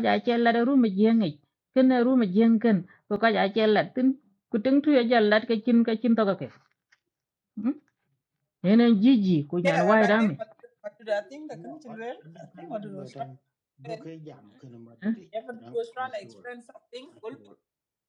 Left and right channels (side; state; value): both; identical; correlation 1.00